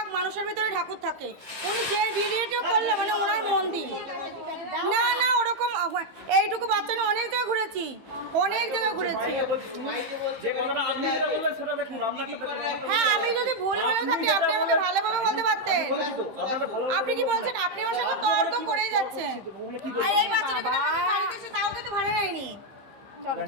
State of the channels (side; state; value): left; late; 15 ms